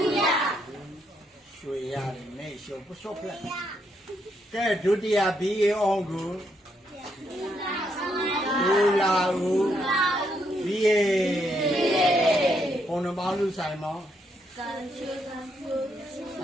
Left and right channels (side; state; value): both; normal; correlation 0.76